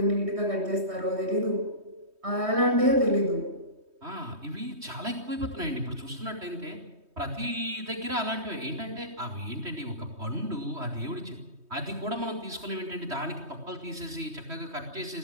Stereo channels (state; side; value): late; left; 3.2 ms